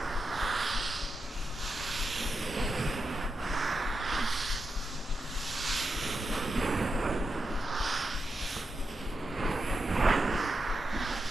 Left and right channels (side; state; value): both; normal; correlation 0.87